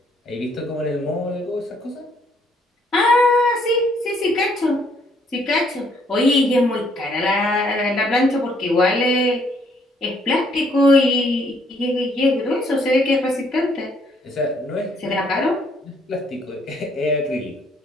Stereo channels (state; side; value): normal; both; correlation 0.67